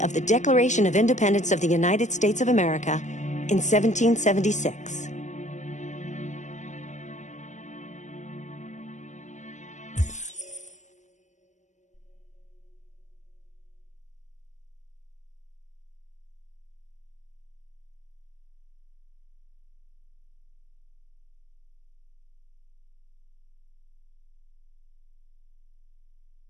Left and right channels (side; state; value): right; late; 0.35 ms